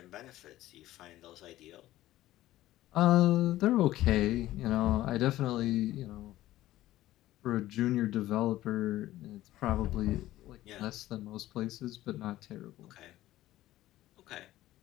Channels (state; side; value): quieter; right; 15.2 dB